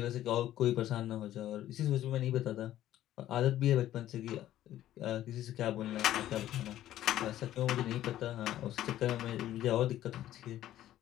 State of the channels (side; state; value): right; quieter; 13.1 dB